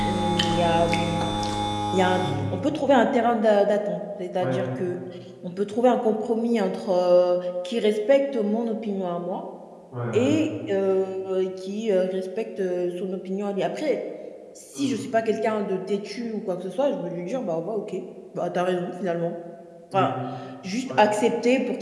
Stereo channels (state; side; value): identical; both; correlation 1.00